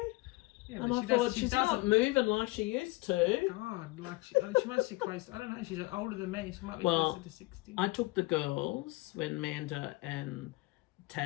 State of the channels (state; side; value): quieter; right; 22.1 dB